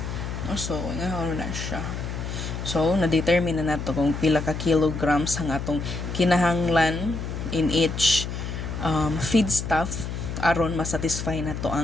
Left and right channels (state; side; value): noise; left; hum, 5 dB below the sound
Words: So, nga na siya. So, na-determine na nato kung pila ka kilograms ang atong kinahanglan in each feedstuff aron masatisfy na to